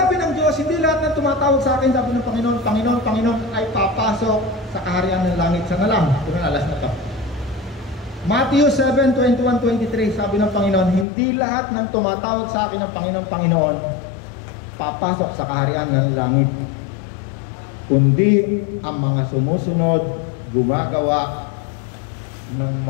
ng Diyos, hindi lahat ng tumatawag sa akin, sabi ng Panginoon, Panginoon, Panginoon, ay papasok sa kaharian ng langit. Sana lang, ito na alas na to. Matthew 7:21-23, sabi ng Panginoon, hindi lahat ng tumatawag sa akin ng Panginoon, Panginoon, papasok sa kaharian ng langit. Kundi ang mga sumusunod, gumagawa ng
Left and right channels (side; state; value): right; drops out; at 11.1 s